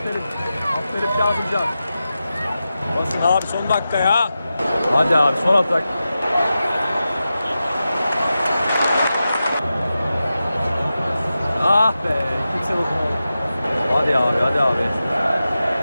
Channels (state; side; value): inverted; both; correlation -0.92